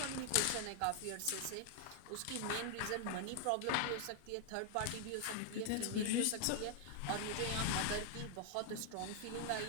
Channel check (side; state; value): both; different; correlation 0.00